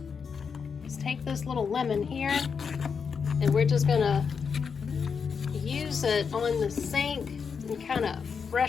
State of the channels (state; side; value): quieter; right; 6.1 dB